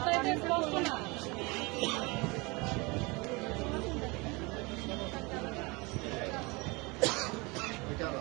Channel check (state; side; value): quieter; left; 26.3 dB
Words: এটা স্পষ্ট না।